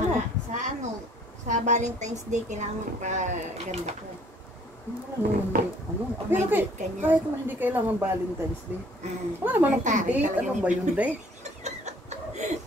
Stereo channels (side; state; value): both; normal; correlation 0.58